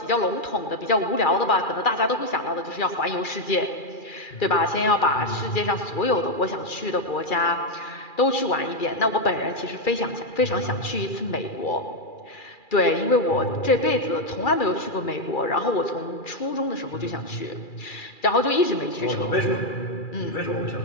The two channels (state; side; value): late; right; 2.4 ms